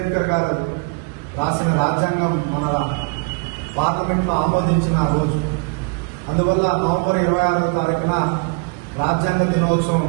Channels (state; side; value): quieter; left; 31.4 dB